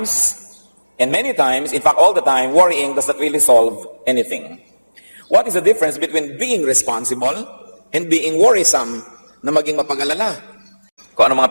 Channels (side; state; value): both; inverted; correlation -1.00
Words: and many times, in fact all the time, worrying does not really solve anything. What is the difference between being responsible and being worrisome na maging mapag-alala? Kung ano